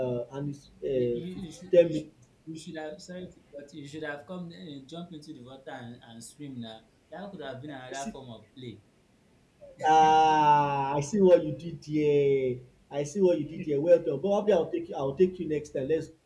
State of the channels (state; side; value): identical; both; correlation 1.00